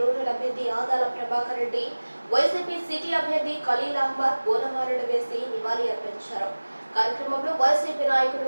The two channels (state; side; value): inverted; both; correlation -1.00